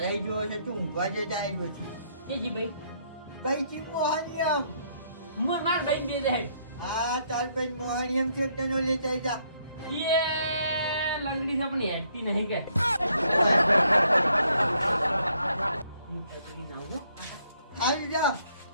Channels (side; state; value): both; inverted; correlation -0.70